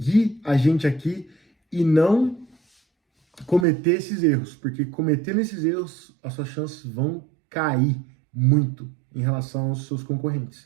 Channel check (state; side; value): drops out; left; at 3.7 s